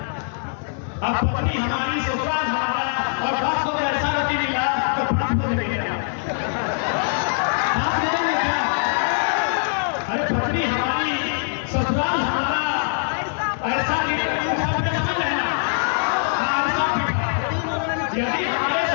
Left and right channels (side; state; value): right; silent; 59 dB below the other